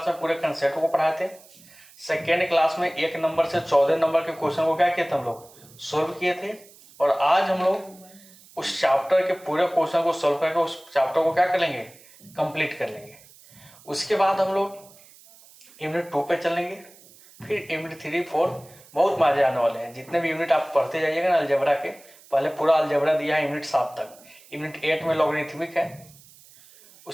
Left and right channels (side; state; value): right; noise; hiss, 24 dB below the sound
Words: में पूरे कंसेप्ट को पढ़ाए थे, सेकेंड क्लास में 1 नंबर से 14 नंबर के क्वेश्चन को क्या किए थे हम लोग सॉल्व किए थे। और आज हम लोग उस चैप्टर के पूरे क्वेश्चन को सॉल्व करके उस चैप्टर को क्या कर लेंगे, कंप्लीट कर लेंगे। उसके बाद हम लोग यूनिट 2 पे चलेंगे, फिर यूनिट 3, 4 बहुत मजे आने वाले हैं। जितने भी यूनिट आप पढ़ते जाइएगा ना अलजेब्रा के, पहले पूरा अलजेब्रा दिया है यूनिट 7 तक, यूनिट 8 में लॉगरिथमिक है,